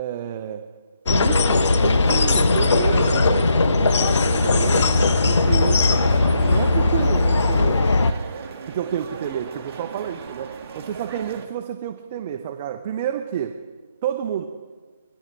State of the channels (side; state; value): both; inverted; correlation -0.77